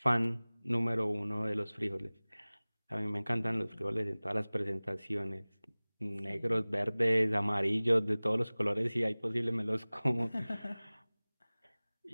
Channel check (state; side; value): inverted; both; correlation -1.00